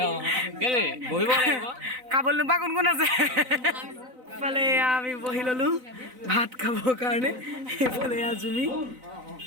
খাবলৈ নোপোৱা কোন কোন আছে এইফালে আমি বহি ললো ভাত খাবৰ কাৰণে এইফালে জুমি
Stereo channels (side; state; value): left; late; 4.0 ms